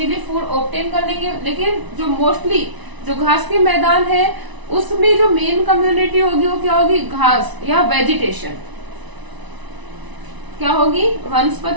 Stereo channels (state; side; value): late; left; 1.0 ms